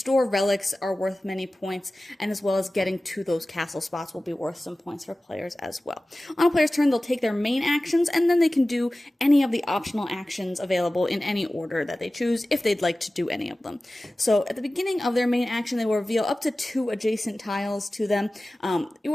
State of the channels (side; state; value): both; normal; correlation 0.96